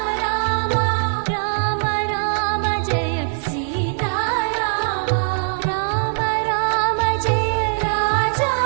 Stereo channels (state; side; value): silent; left; digital silence